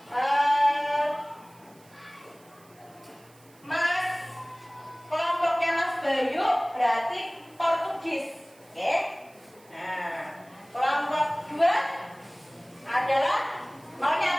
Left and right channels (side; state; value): right; noise; hiss, 28 dB below the sound